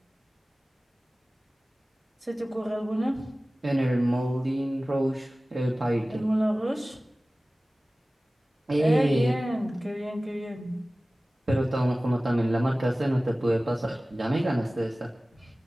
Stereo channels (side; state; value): both; normal; correlation 0.97